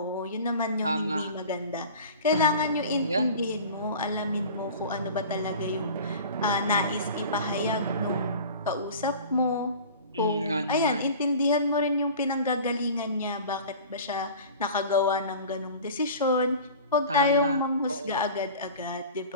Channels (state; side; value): inverted; both; correlation -0.39